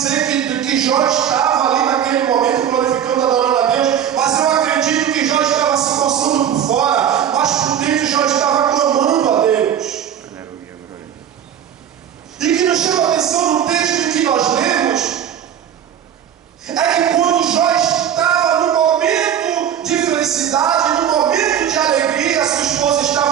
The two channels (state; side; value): quieter; left; 9.4 dB